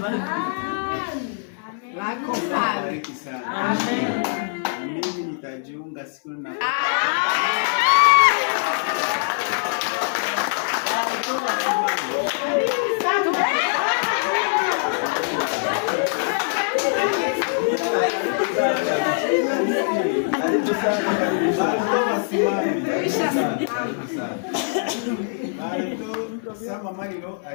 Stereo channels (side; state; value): right; silent; 62 dB below the other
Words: Amen. Amen. Na mimi nitajiunga siku na Sama Marilo